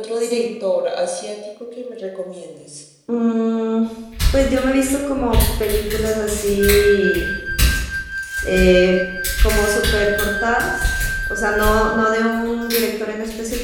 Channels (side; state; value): both; identical; correlation 1.00